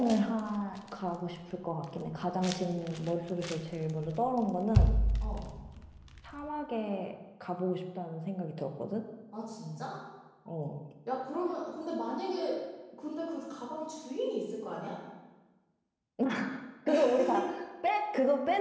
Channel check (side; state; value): both; identical; correlation 1.00